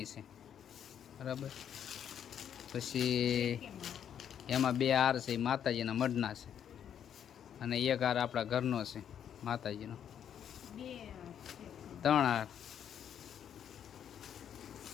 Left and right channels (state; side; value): quieter; right; 9.0 dB